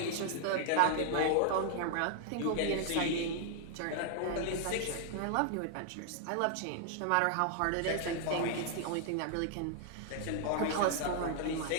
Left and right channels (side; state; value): both; different; correlation 0.00